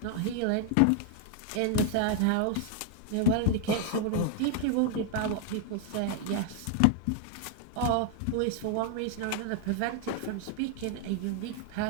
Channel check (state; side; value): different; both; correlation 0.00